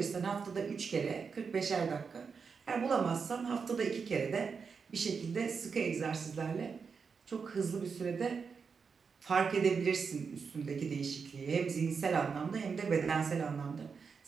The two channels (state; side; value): quieter; left; 5.6 dB